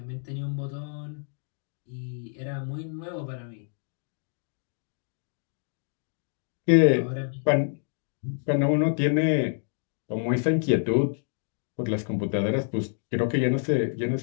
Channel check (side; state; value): right; silent; digital silence